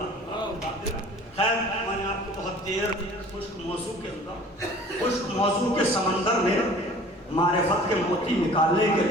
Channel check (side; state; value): both; normal; correlation 0.47